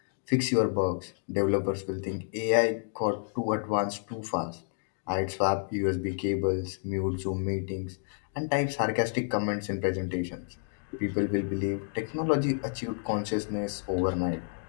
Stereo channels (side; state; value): right; silent; 58 dB below the other